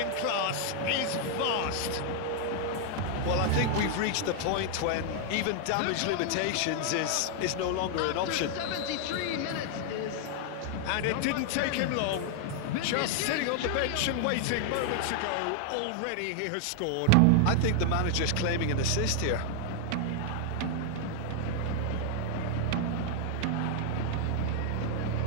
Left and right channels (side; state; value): both; different; correlation 0.00